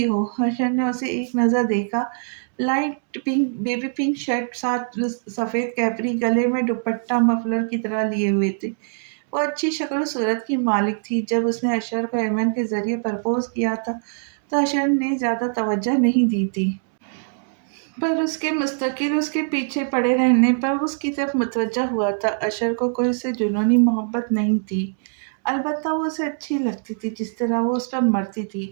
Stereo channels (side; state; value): left; silent; digital silence